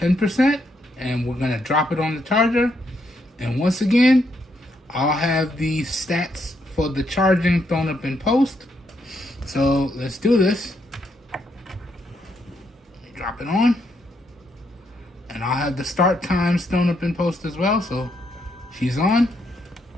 and we're gonna drop it on the charger. And once again, I'll have the stats for the charging thrown up in post. So let's do this. Drop it on. And I'll have the start times thrown up in post as well. So she's on.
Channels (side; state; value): both; normal; correlation 0.77